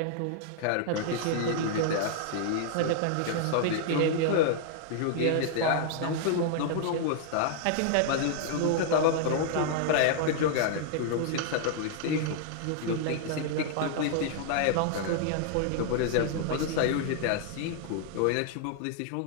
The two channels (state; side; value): different; both; correlation -0.01